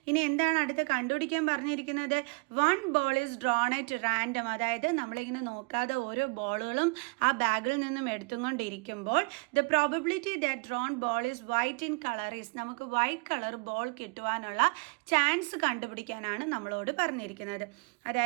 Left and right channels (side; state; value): left; quieter; 31.6 dB